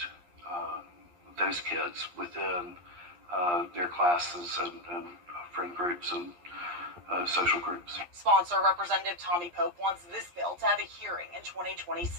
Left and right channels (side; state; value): left; late; 11 ms